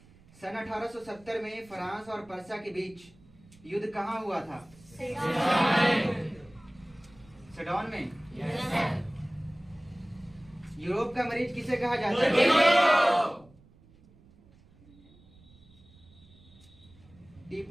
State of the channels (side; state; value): right; noise; rumble, 26 dB below the sound